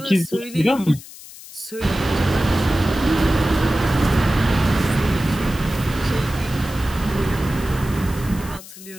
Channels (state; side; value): noise; left; hiss, 17 dB below the sound